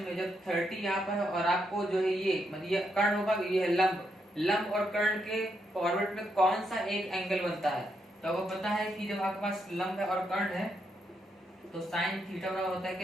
जब 30 यहाँ पर है और आपको जो है ये मतलब ये कर्ण होगा, ये है लंब, लंब और कर्ण के फॉरवर्ड में कौन सा एक एंगल बनता है। तो आपको पता है कि जब आपके पास लंब है और कर्ण है तो साइन थीटा बराबर होता है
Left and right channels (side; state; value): both; normal; correlation 0.79